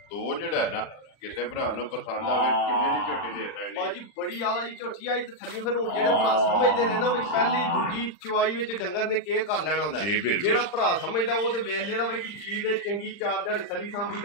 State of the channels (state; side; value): late; right; 39 ms